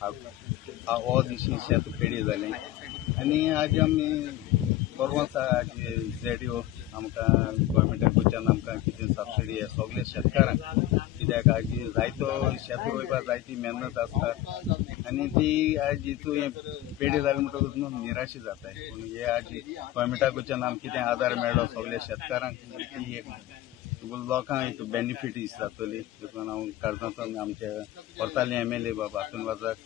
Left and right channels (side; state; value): right; quieter; 14.4 dB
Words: हो दिशी शेत पेडी जालें आनी आज आमी परवांच आज ZDO आमकां गोवोरमेंटाक वयच्यान आमकां कितें सबसिडी हे सगळे शेतकारांक कित्याक आज जायतो शेत रोयपाक जायती मेहनत आसता आनी ती आज हितून हें पेडी जालें म्हणटकूच न्हू निराशी जाताय पूण हे आज गोवोरमेंटाक वयच्यान आमकां कितें आदार मेळ्ळो सगळ्या शेतकारांक ती एक लोकांक एक बेनिफीट जातली देखून हांव काळजांतल्यान आमचे व्हरताले MLA बाबा हातून